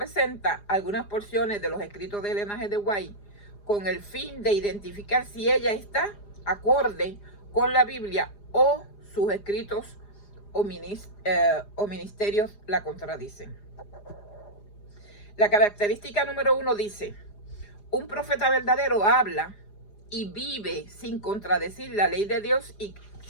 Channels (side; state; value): right; late; 4.9 ms